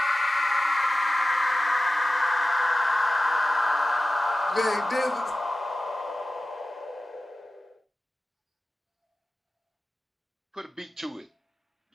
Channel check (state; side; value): normal; both; correlation 0.95